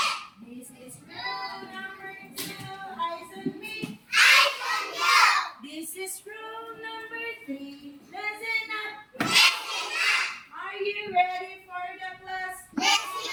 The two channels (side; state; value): both; identical; correlation 1.00